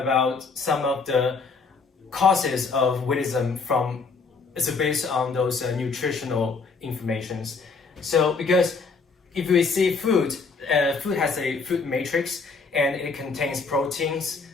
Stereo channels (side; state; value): right; quieter; 4.5 dB